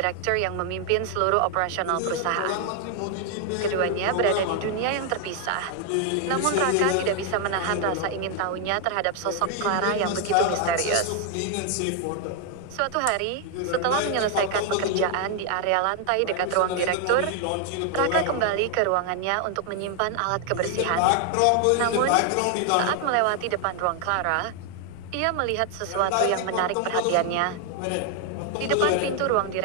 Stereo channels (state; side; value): different; both; correlation 0.00